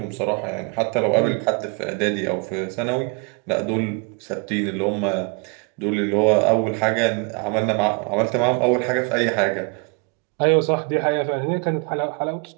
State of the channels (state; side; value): quieter; left; 34.4 dB